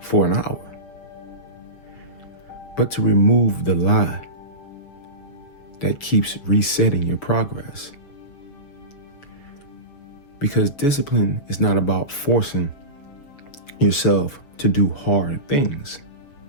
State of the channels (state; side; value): late; right; 7.1 ms